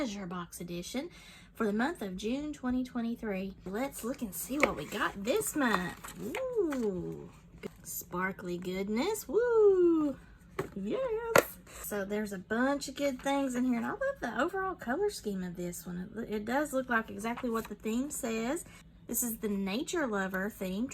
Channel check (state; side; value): identical; both; correlation 1.00